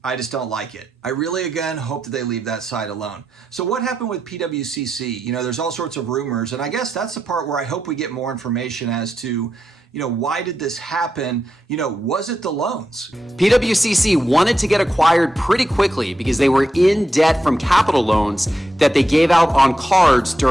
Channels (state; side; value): normal; both; correlation 0.86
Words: I just don't like it. I really, again, hope that they leave that side alone. So what happened with PWCC? There's all sorts of rumors, and I guess that's the part where I hope we get more information as to, why did this happen? Was it the loans? PWCC wanted to get acquired pretty quickly because they were in debt from capital loans that they gave out on cards